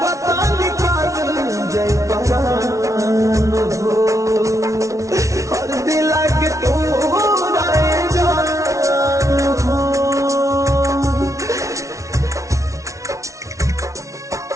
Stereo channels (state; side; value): late; left; 0.15 ms